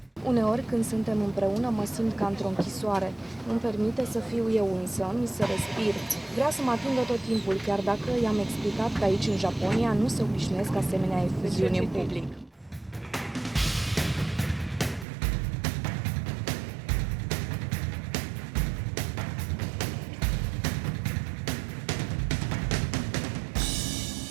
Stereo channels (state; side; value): drops out; left; at 15.1 s